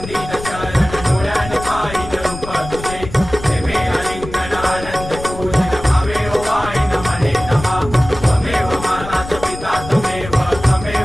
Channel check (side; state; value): left; noise; rumble, 12 dB below the sound